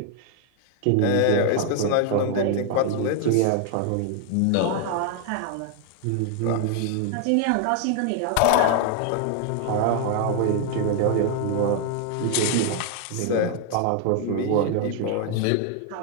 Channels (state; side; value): different; both; correlation 0.00